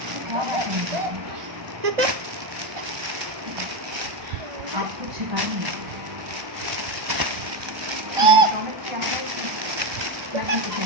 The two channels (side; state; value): left; late; 1.2 ms